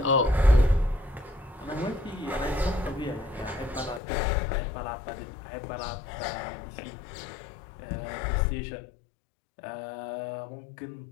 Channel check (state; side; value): drops out; right; at 4.0 s